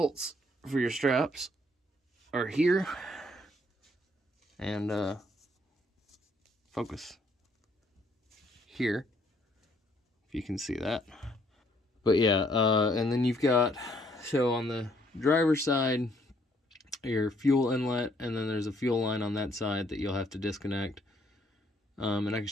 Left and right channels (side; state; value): both; normal; correlation 0.67